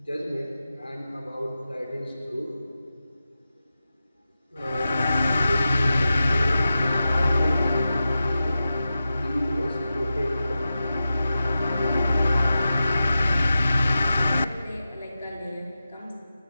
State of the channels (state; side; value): inverted; both; correlation -0.93